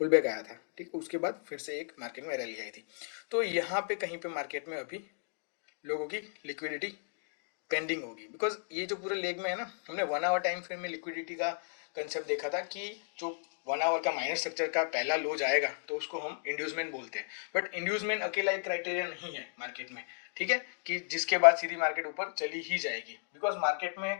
बैक आया था। ठीक है, उसके बाद फिर से एक मार्केट में रैली आई थी, तो यहाँ पे कहीं पे मार्केट में अभी लोगों की लिक्विडिटी पेंडिंग होगी, बिकॉज ये जो पूरे लेग में है ना, हमने 1 आवर टाइम फ्रेम में लिक्विडिटी का कंसेप्ट देखा था कि जो 1 आवर का माइनस स्ट्रक्चर का पहला लो जाएगा तो उसको हम इंड्यूसमेंट बोलते हैं। बट इंड्यूसमेंट अकेला एक क्राइटेरिया नहीं है मार्केट में। ठीक है, कि जिसके बाद सीधी मार्केट ऊपर चली ही जाएगी, बिकॉज मार्केट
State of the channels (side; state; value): right; silent; digital silence